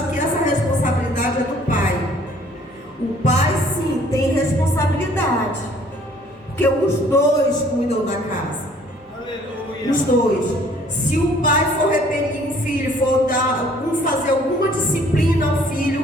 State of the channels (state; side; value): normal; both; correlation 0.57